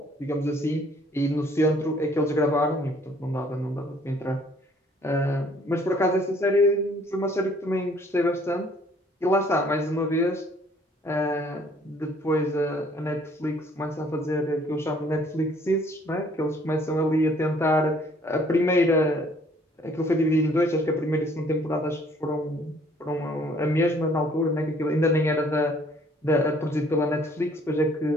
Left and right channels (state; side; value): normal; both; correlation 0.60